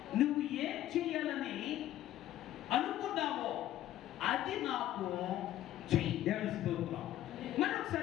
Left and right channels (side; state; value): right; quieter; 13.2 dB